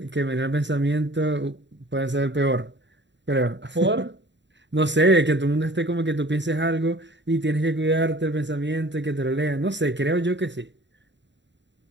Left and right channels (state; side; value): late; left; 0.52 ms